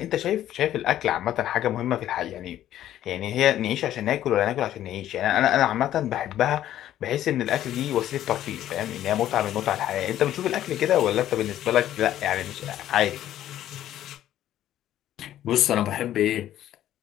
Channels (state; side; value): quieter; right; 12.3 dB